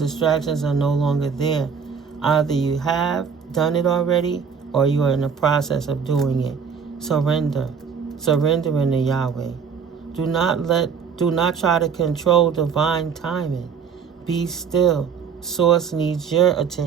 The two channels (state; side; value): quieter; left; 6.4 dB